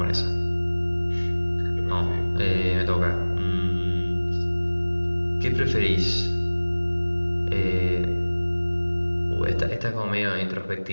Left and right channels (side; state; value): both; inverted; correlation -1.00